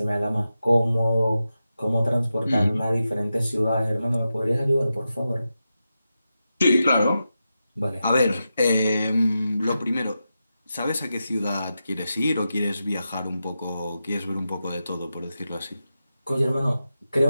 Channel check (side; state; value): both; inverted; correlation -0.90